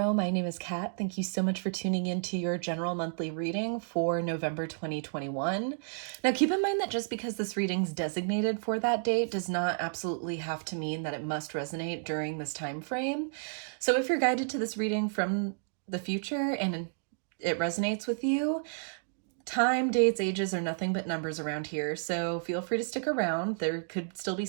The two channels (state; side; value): silent; left; digital silence